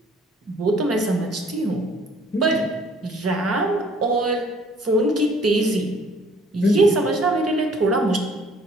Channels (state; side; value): normal; both; correlation 0.58